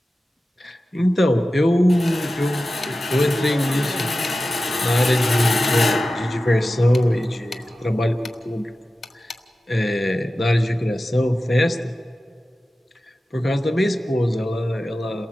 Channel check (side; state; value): both; normal; correlation 0.94